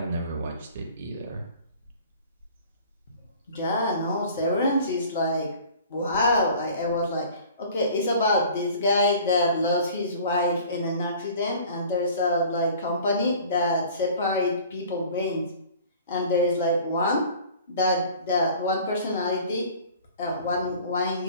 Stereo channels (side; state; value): both; inverted; correlation -0.47